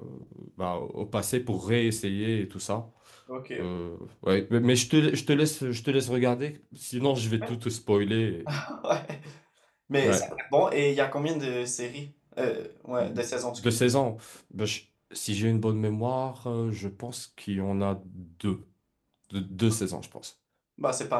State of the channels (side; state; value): both; identical; correlation 1.00